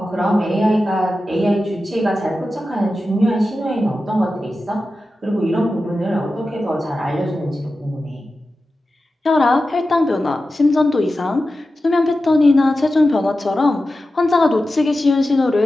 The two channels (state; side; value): normal; both; correlation 0.93